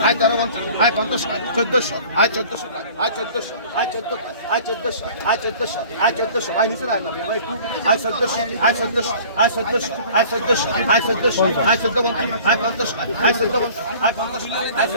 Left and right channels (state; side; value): inverted; both; correlation -0.47